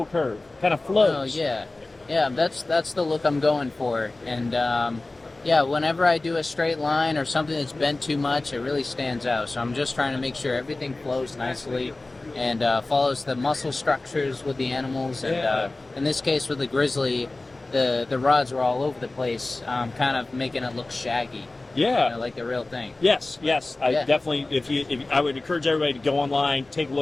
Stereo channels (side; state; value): right; quieter; 3.0 dB